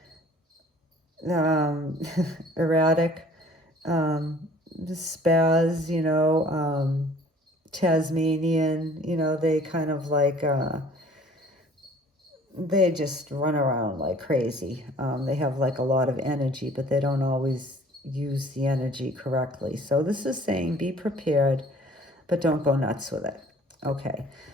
erratic. Spaz, Tasmanian, they kind of like, they just run around like crazy. They have like a lot of energy, but they don't always use the energy correctly. So this is saying be prepared, but don't go nuts with it. Okay,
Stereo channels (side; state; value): both; normal; correlation 0.53